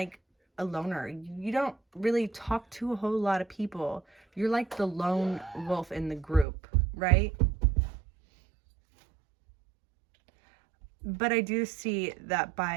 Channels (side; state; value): left; drops out; at 6.5 s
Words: a loner. You don't really talk to a whole lot of people. You're like the lone wolf in the group, right? But I do see that